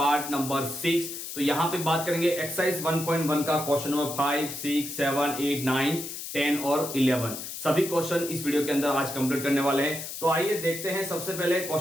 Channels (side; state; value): left; noise; hiss, 8 dB below the sound